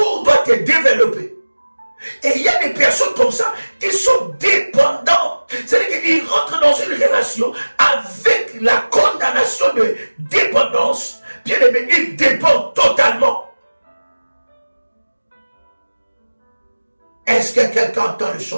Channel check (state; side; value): inverted; both; correlation -1.00